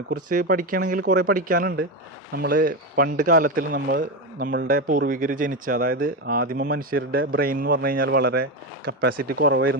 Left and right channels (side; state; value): both; normal; correlation 0.14